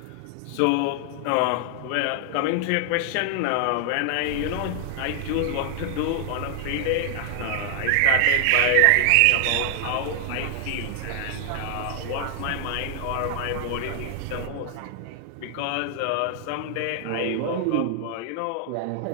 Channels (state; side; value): different; both; correlation 0.00